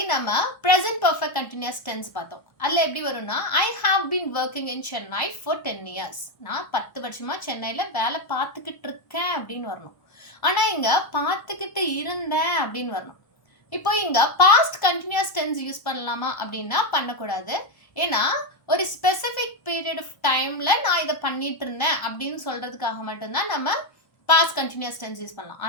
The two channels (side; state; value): right; late; 1.0 ms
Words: நம்ம present perfect continuous tense பார்த்தோம். அதில் எப்படி வரும்னா I have been working in Chennai for 10 years. நான் 10 வருஷமா சென்னையில் வேலை பார்த்துக்கிட்டு இருக்கேன் அப்படின்னு வரணும். ஆனால் இங்கே பார்த்துக்கிட்டு இருந்தேன் அப்படின்னு வரணும். இப்போ இங்கே பாஸ்ட் கண்டினியூஸ் டென்ஸ் யூஸ் பண்ணலாமா அப்படின்னா பண்ணக்கூடாது. ஏன்னா ஒரு ஸ்பெசிஃபிக் பீரியட் ஆஃப் டைமில் நான் இதை பண்ணிட்டு இருந்தேன் அப்படின்னு சொல்கிறதுக்காக மட்டும்தான் நம்ம பாஸ்ட் கண்டினியூஸ் டென்ஸ் யூஸ் பண்ணலாம்.